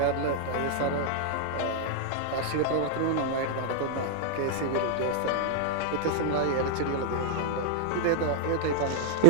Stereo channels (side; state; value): both; different; correlation -0.01